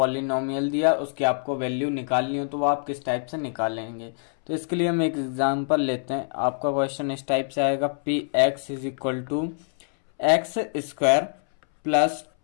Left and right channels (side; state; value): right; silent; 61 dB below the other